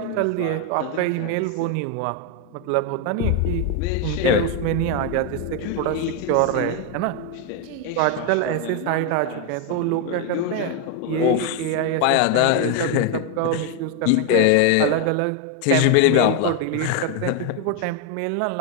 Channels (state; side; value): different; both; correlation 0.01